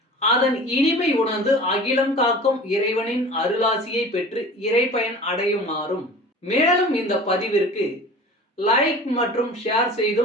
அதன் இனிமை உணர்ந்து அகிலம் காக்கும் இறைவனின் அருளாசியை பெற்று இறைப்பயன் அடையுமாறும், மேலும் இந்த பதிவிற்கு லைக் மற்றும் ஷேர்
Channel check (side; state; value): both; normal; correlation 0.40